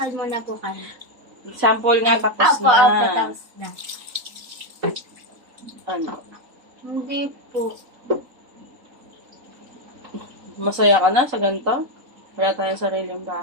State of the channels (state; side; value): late; left; 3.8 ms